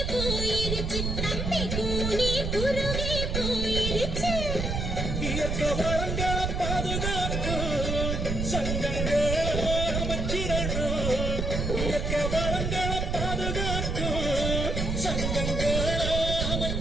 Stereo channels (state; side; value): noise; right; rumble, 1 dB below the sound